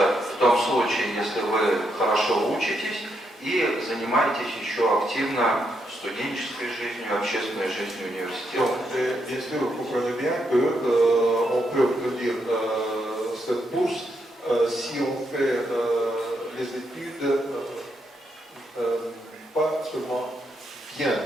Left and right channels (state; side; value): normal; both; correlation 0.79